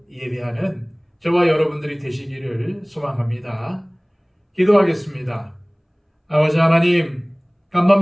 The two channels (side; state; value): both; identical; correlation 1.00